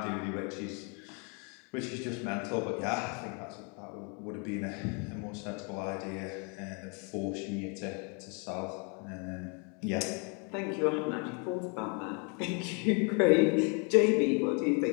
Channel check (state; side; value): quieter; right; 35.2 dB